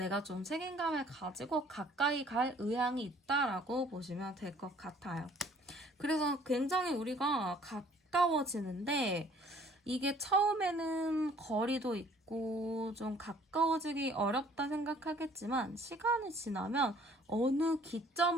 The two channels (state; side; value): normal; both; correlation 0.56